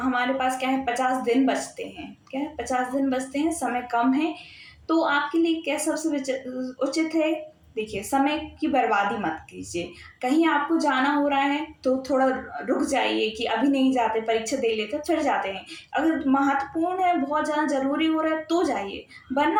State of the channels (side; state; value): both; identical; correlation 1.00